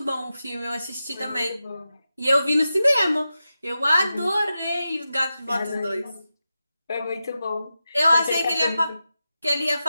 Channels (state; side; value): inverted; both; correlation -0.91